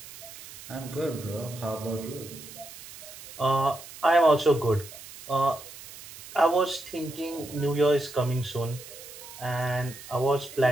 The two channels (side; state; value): right; noise; hiss, 15 dB below the sound